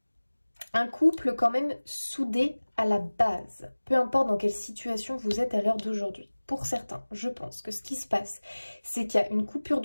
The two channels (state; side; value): inverted; both; correlation -1.00